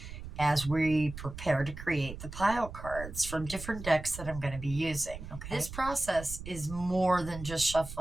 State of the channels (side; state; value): right; noise; rumble, 11 dB below the sound